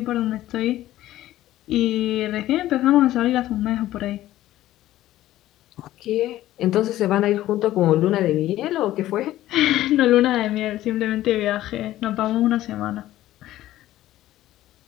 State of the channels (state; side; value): quieter; right; 14.5 dB